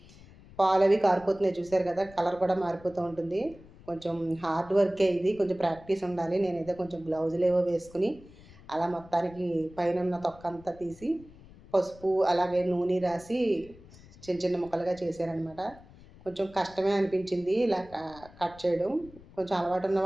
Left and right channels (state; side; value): noise; left; rumble, 22 dB below the sound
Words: పాలవి కారిపోతున్నాయి చూసారు కదా! కలర్ కూడా మారిపోతూ ఉంటుంది. కొంచెం హార్డ్ వర్కే ఇది. కొంచెం ప్రాక్టీస్ ఉండాలి. నేనైతే కొంచెం గ్లౌజులేవో వేసుకొని అలా మొత్తానికి పైనున్న తొక్కంతా తీసి పసుపు అలాగే నూనె రాసి చిన్న చిన్న ముక్కలుగా చేశాననమాట. కొంచెం కష్టమే అనిపించింది ఇలా కట్ చేయడం. కొంచెం అలవాటు ఉన్న